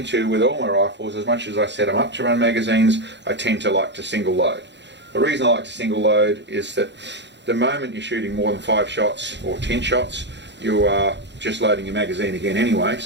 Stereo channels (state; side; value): late; left; 0.52 ms